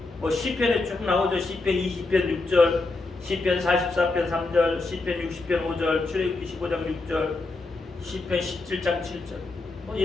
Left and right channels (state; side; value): quieter; right; 3.4 dB